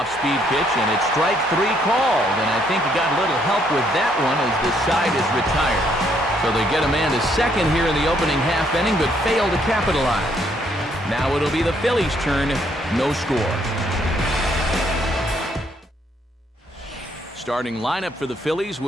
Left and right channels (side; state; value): both; normal; correlation 0.70